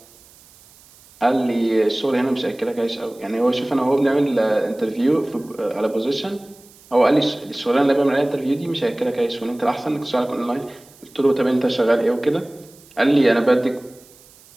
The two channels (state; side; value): noise; right; hiss, 26 dB below the sound